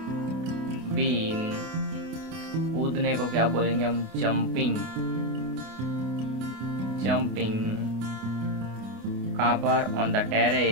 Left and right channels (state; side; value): late; left; 28 ms